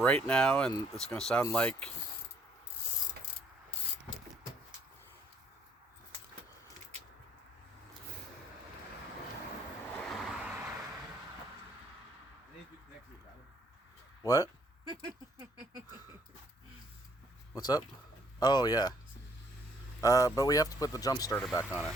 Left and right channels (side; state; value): both; normal; correlation 0.66